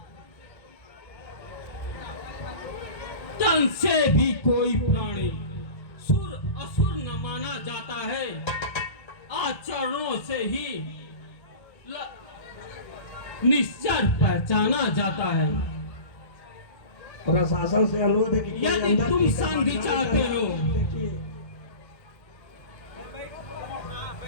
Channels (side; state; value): right; late; 1.4 ms